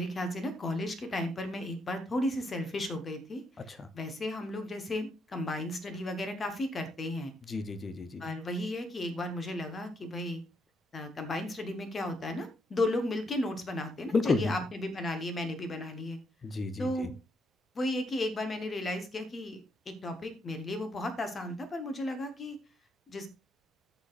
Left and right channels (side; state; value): both; normal; correlation 0.77